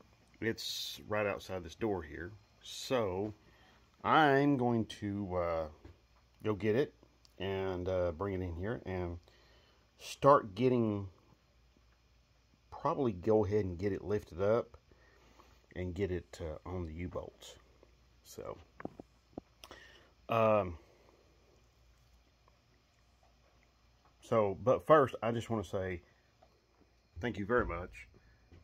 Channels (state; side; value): identical; both; correlation 1.00